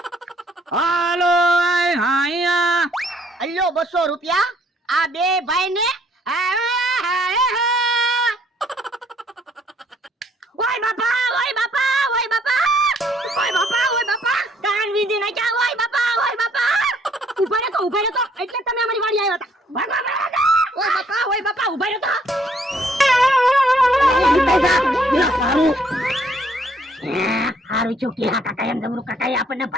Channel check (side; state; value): both; normal; correlation 0.65